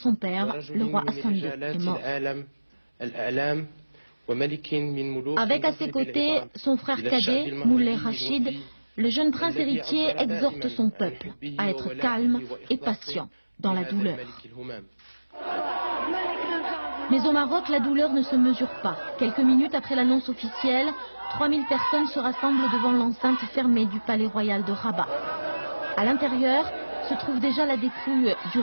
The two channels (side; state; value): both; inverted; correlation -1.00